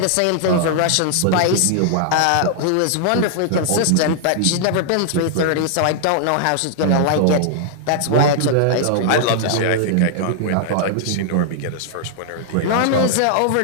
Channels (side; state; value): both; different; correlation -0.01